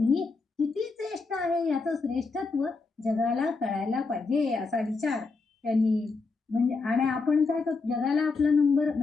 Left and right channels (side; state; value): right; quieter; 4.1 dB